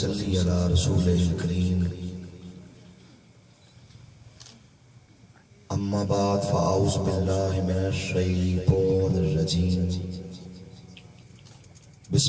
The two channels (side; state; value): both; identical; correlation 1.00